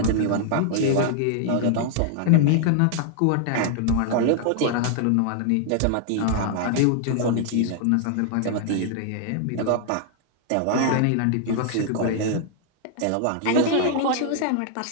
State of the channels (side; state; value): both; different; correlation 0.00